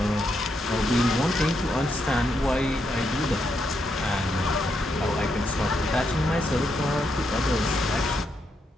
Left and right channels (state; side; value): normal; both; correlation 0.80